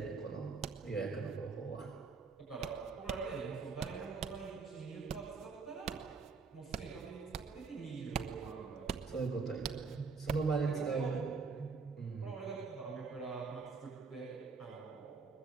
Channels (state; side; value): quieter; left; 4.8 dB